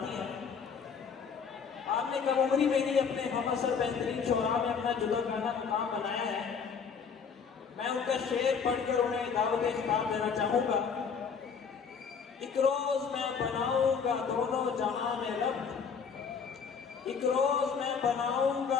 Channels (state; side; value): quieter; right; 6.2 dB